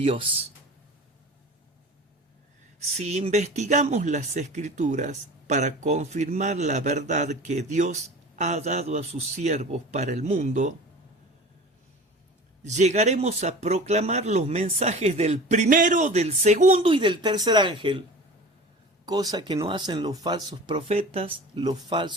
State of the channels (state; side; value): normal; both; correlation 0.37